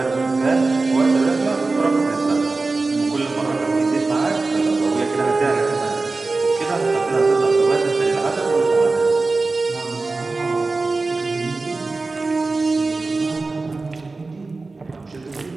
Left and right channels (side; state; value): left; quieter; 3.6 dB